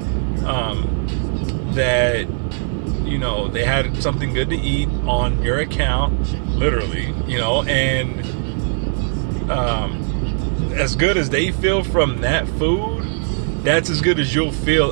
that, you know, they had something good to eat on your account, literally, you know, and as good as they feel from that food, that's as good as you'll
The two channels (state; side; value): silent; left; 57 dB below the other